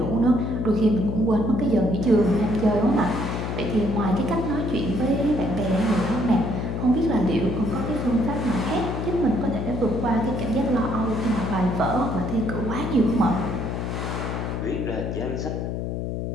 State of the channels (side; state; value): left; noise; hum, 3 dB below the sound